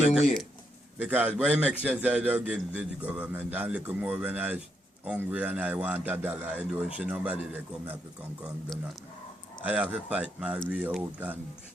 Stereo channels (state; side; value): normal; both; correlation 0.79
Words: way. Because what makes sense, I don't give the government, and look more when I hungry and I want $1, I don't see nobody they come up and come do nothing. I have to fight my way out and